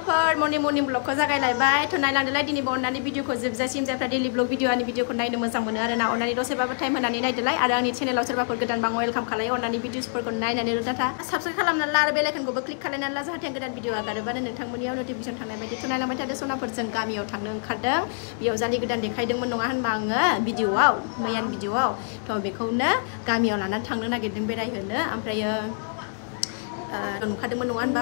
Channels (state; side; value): silent; right; digital silence